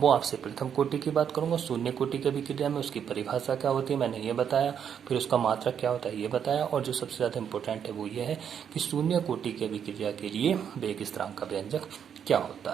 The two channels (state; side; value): quieter; left; 8.2 dB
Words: आपसे प्रथम कोटि की बात करूंगा। शून्य कोटि की अभिक्रिया में उसकी परिभाषा क्या होती है मैंने ये बताया, फिर उसका मात्रक क्या होता है ये बताया, और जो सबसे ज़्यादा इंपॉर्टेंट है वो ये है कि शून्य कोटि की अभिक्रिया के लिए वेग स्थिरांक का व्यंजक क्या